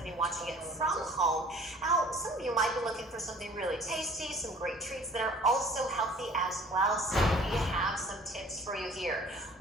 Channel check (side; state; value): both; normal; correlation 0.51